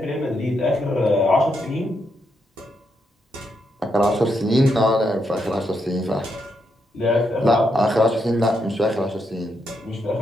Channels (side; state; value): both; normal; correlation 0.80